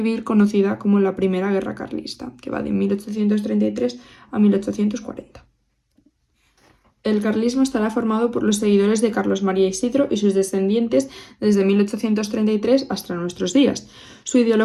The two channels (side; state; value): both; identical; correlation 1.00